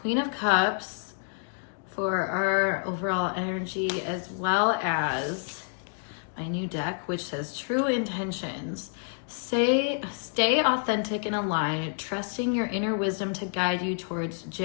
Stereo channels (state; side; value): silent; right; digital silence